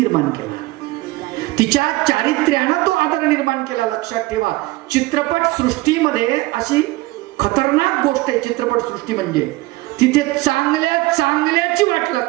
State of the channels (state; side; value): quieter; left; 20.0 dB